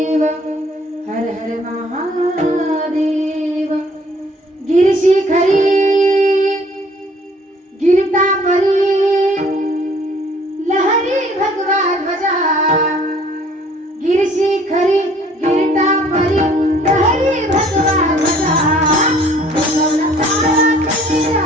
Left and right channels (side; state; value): both; normal; correlation 0.57